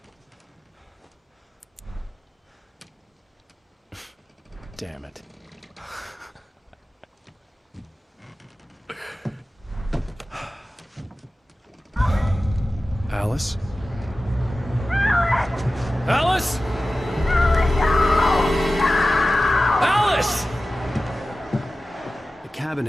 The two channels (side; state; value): both; normal; correlation 0.95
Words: Damn it. Alice? Alice? Alice! The cabin